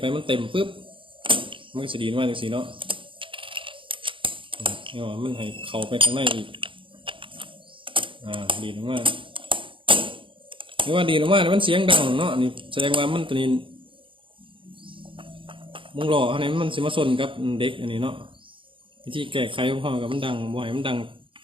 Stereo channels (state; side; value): late; left; 0.25 ms